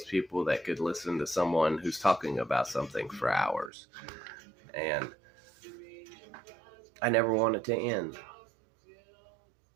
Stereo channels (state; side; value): drops out; left; at 3.7 s